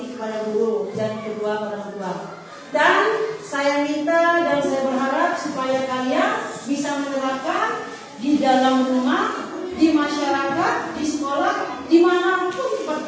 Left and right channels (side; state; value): both; identical; correlation 1.00